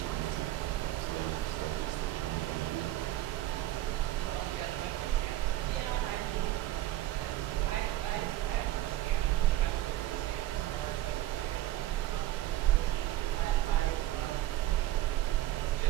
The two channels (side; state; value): left; quieter; 14.7 dB